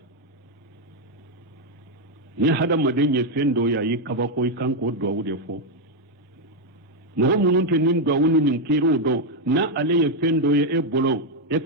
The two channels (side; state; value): both; normal; correlation 0.02